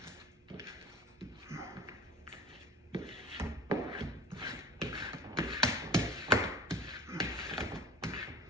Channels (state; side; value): normal; both; correlation 0.41